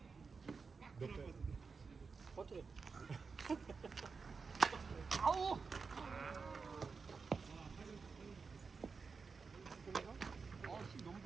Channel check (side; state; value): left; quieter; 4.9 dB